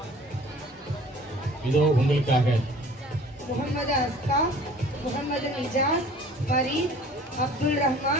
இதோ உங்களுக்காக முகமது அஸ்கா, முகமது நிஜாஸ், ஃபரீத், அப்துல்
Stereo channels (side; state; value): both; normal; correlation 0.49